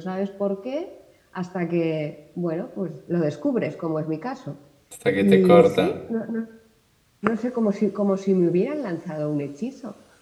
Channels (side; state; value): both; identical; correlation 1.00